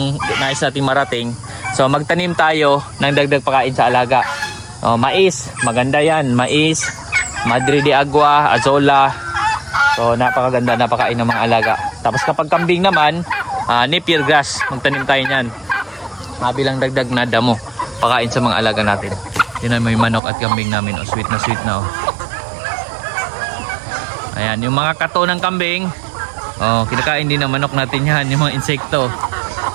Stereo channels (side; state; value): left; drops out; at 20.2 s